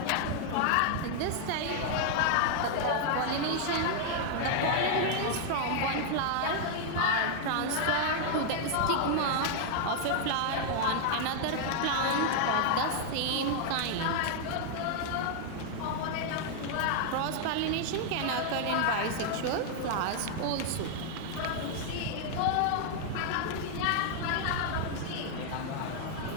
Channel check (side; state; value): both; different; correlation 0.00